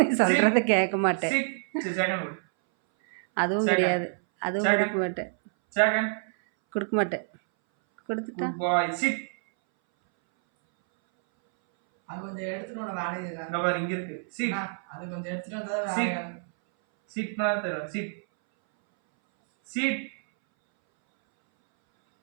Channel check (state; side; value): silent; left; 60 dB below the other